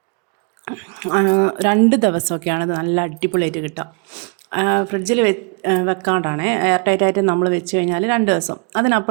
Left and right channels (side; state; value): left; quieter; 37.3 dB